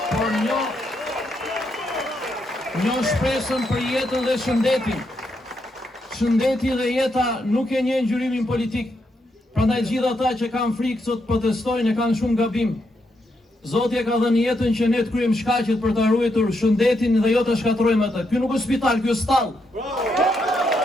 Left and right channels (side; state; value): both; normal; correlation 0.80